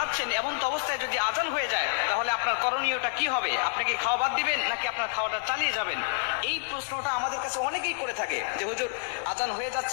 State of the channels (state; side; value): silent; right; digital silence